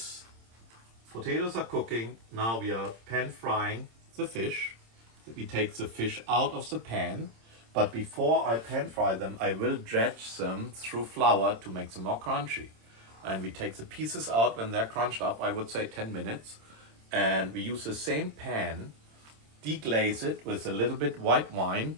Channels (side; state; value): left; late; 26 ms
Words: potatoes are cooking. Now we are pan frying the fish. We take the fish out of the pan. But before I pan fry them, I will dredge them through flour to make them more crunchy. And we take the pieces out when they're crunched up, I would say 10 minutes. And we use the same pan, deglaze it with a little bit white wine